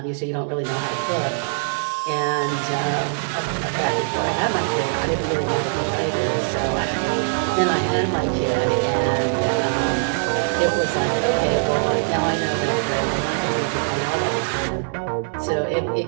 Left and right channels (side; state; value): left; silent; digital silence